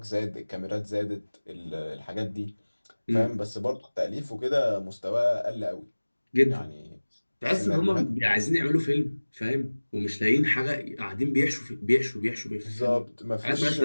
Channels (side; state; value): both; inverted; correlation -1.00